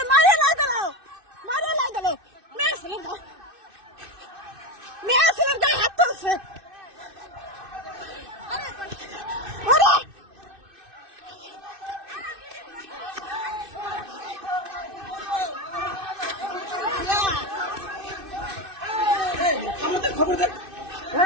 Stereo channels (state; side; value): late; left; 2.6 ms